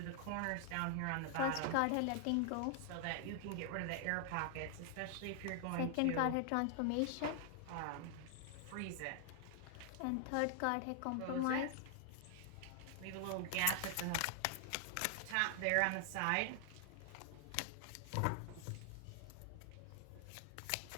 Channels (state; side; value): different; both; correlation 0.00